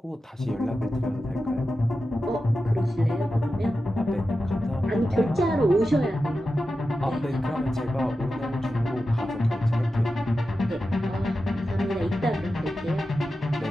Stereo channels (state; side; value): normal; both; correlation 0.91